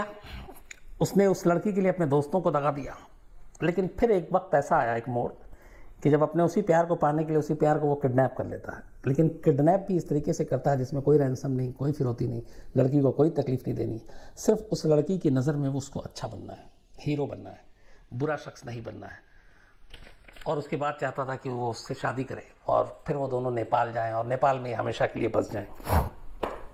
उसने उस लड़की के लिए, अपने दोस्तों को दगा दिया। लेकिन फिर एक वक्त ऐसा आया, एक मोड़, कि जब अपने उसी प्यार को पाने के लिए उसी प्यार को वो किडनैप कर लेता है। लेकिन किडनैप भी इस तरीके से करता है जिसमें कोई रैंसम नहीं, कोई फिरौती नहीं, लड़की को कोई तकलीफ नहीं देनी, सिर्फ उस लड़की की नज़र में वो उसको अच्छा बनना है, हीरो बनना है, बुरा शख्स नहीं बनना है। और उसके बाद चाहता था कि वो उससे शादी करे और फिर वो दोनों नेपाल जाएं और नेपाल में हमेशा के लिए बस जाएं।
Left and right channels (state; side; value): identical; both; correlation 1.00